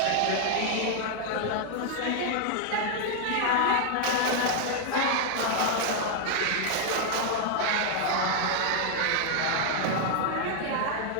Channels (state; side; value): different; both; correlation 0.00